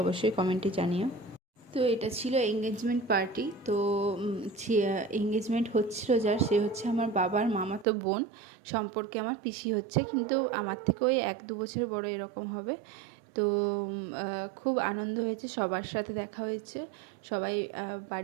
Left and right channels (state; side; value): drops out; left; at 7.9 s